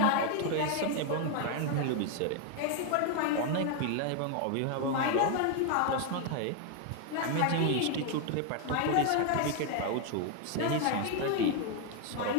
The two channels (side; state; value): both; different; correlation 0.01